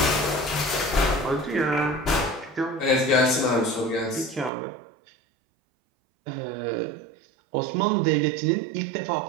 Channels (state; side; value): drops out; left; at 4.5 s